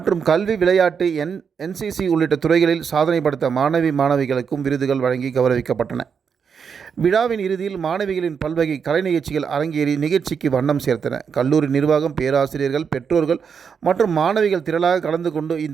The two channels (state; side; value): quieter; left; 6.5 dB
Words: கல்வி, விளையாட்டு, NCC உள்ளிட்ட துறைகளில் சாதனை படைத்த மாணவிகளுக்கும் விருதுகள் வழங்கி கௌரவிக்கப்பட்டன. விழாவின் இறுதியில் மாணவிகளின் பல்வகை கலை நிகழ்ச்சிகள் அரங்கேறி நிகழ்ச்சிக்கு வண்ணம் சேர்த்தன. கல்லூரி நிர்வாகம், பேராசிரியர்கள், பெற்றோர்கள் மற்றும் மாணவிகள் திரளாக கலந்து கொண்டு